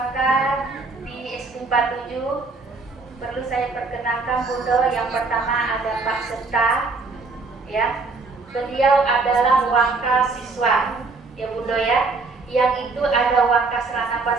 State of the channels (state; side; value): quieter; left; 3.9 dB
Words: di SD 47. Perlu saya perkenalkan Bundo. Yang pertama ada Pak Serta, ya. Beliau adalah waka siswa, ya Bundo ya. Yang itu ada waka Serana